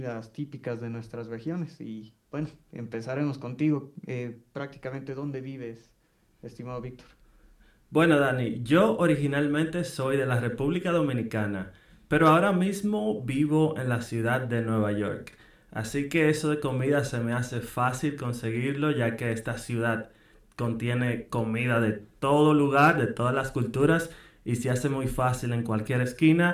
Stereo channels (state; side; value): identical; both; correlation 1.00